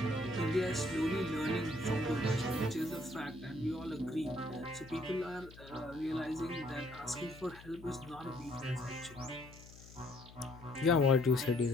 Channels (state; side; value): noise; left; hum, 19 dB below the sound